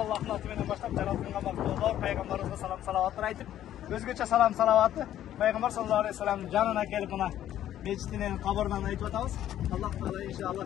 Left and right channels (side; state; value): right; quieter; 11.9 dB